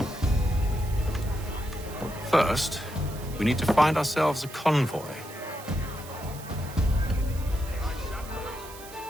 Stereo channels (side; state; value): right; noise; hiss, 16 dB below the sound